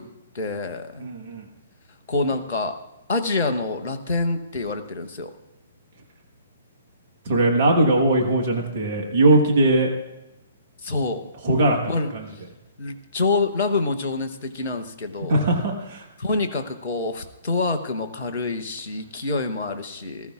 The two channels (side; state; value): both; inverted; correlation -0.57